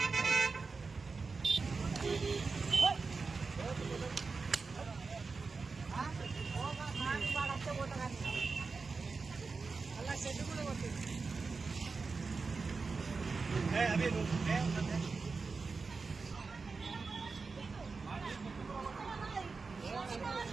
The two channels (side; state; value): left; quieter; 4.4 dB